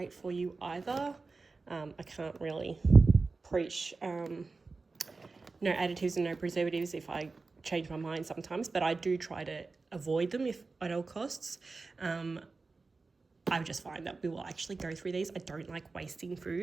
for you either. I can't really preach no additives and no preservatives if I change my mind sometimes, but I do try to avoid them if at all costs. I just find that we will actually go through these. I don't like wasting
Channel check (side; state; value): left; quieter; 4.0 dB